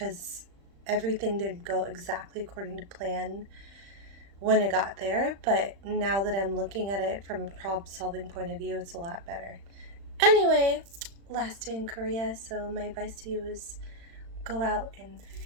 everything didn't go exactly according to plan when I got there. But now that I'm looking at it from a problem solving point of view, it's a lot better. Anyway, last day in Korea, so my advice to you is go out and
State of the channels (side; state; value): left; late; 35 ms